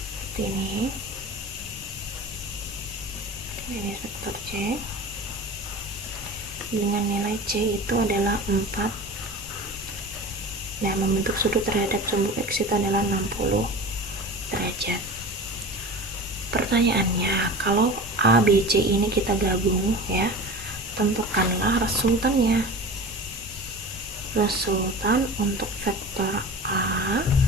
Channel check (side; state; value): both; normal; correlation 0.33